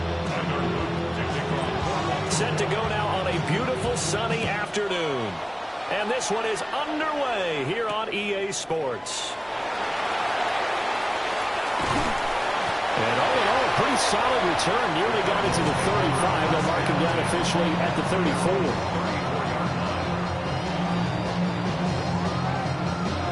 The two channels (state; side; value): identical; both; correlation 1.00